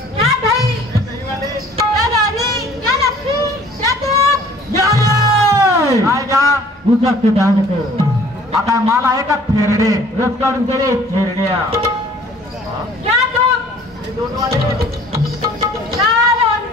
आता माल आहे का थेरडे रस काढून ते रे थेरड्या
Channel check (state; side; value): normal; both; correlation 0.53